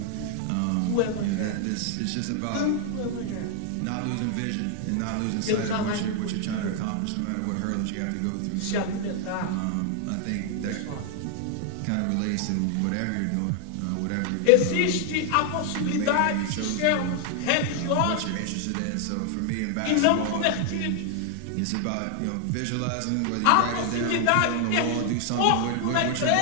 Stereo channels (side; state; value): both; different; correlation 0.00